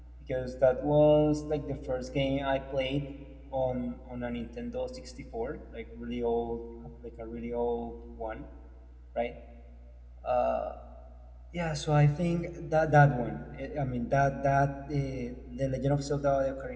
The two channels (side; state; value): both; identical; correlation 1.00